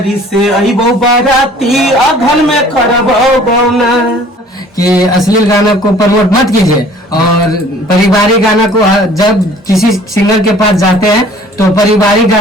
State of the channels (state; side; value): normal; both; correlation 0.52